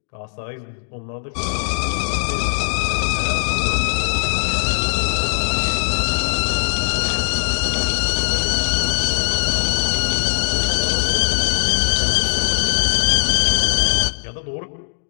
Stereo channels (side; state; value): right; silent; digital silence